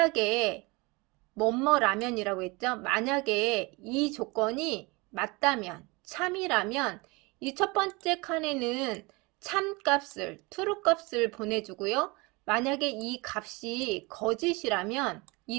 뭐뭐라면이라고 했죠. 만약에 이 조건이 맞다면, 참이라면 이 첫 번째 칸에는 참값을, true 값을 보내주고요. 만약에 이 값이 거짓이라면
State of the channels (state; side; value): quieter; left; 25.9 dB